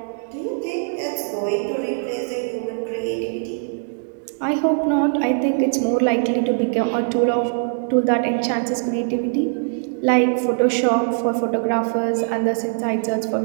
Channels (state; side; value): silent; left; digital silence